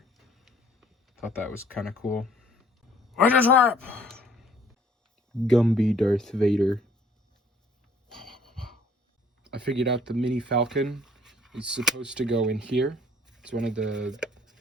Thought that was kind of cool. I just rap! Gumby Darth Vader. I figured out the Mini Falcon is supposed to go in here. It's one of the,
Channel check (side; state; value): both; normal; correlation 0.58